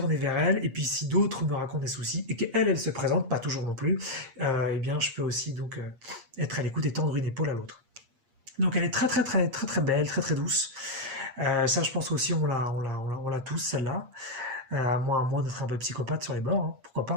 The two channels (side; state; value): left; late; 8.5 ms